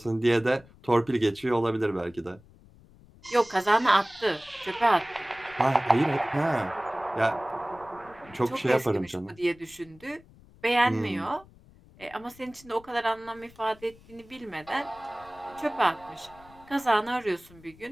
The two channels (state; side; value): noise; left; rumble, 25 dB below the sound